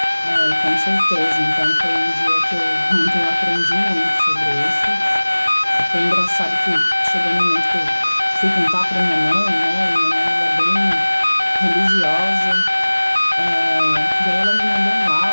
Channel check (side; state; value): both; inverted; correlation -1.00